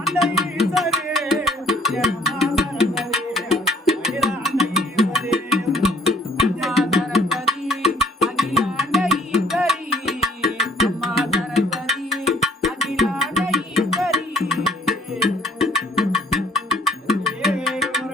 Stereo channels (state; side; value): normal; both; correlation 0.62